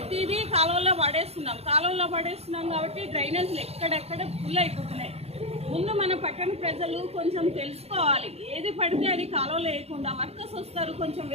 కాలువలో పడేస్తున్నాం కాబట్టి డ్రైనేజ్లు ఎక్కడెక్కడ ఫుల్ అయిపోతున్నాయి. ముందు మన పట్టణ ప్రజలు కొంచెం తెలుసుకోవాలి. ఏది పడితే అది కాలువలో వేయకుండా వర్కర్స్ వస్తారు, కొంచెం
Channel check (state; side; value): late; left; 0.30 ms